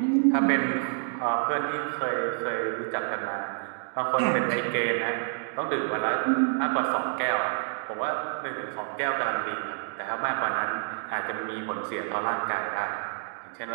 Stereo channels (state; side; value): silent; left; 59 dB below the other